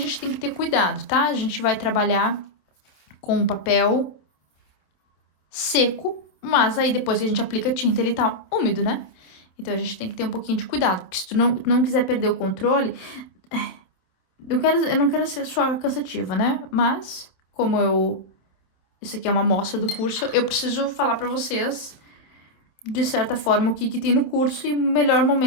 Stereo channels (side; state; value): right; late; 27 ms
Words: tem que ter cuidado, tá? A gente vai trabalhar com o papel seco, mas aí depois que a gente aplica a tinta, ele tá úmido, né? Então, a gente tem que ter um pouquinho de cuidado, porque se tu não quiser perder o controle... Eu não quero ser só cansativa, né? Mas, isso aqui é uma amostra do curso, eu preciso falar pra vocês, de certa forma, o que tem no curso, e melhor